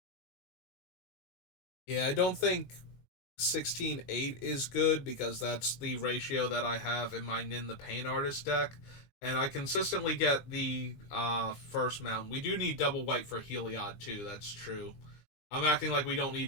Yeah, I don't think 16-8 is good because that's the ratio that I have in my Nin the Pain Artist deck. And I consistently get the first mountain. We do need double white for Heliod too, that's true. I'm acting like we don't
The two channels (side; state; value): right; late; 20 ms